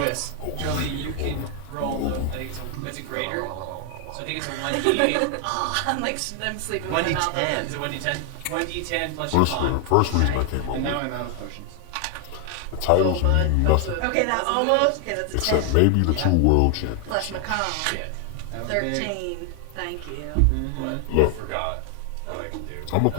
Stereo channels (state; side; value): different; both; correlation 0.00